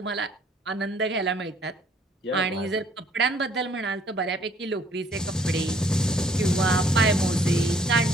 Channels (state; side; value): normal; both; correlation 0.62